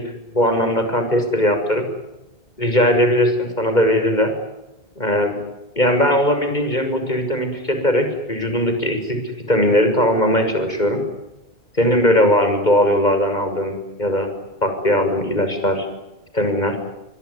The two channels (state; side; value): late; right; 2.1 ms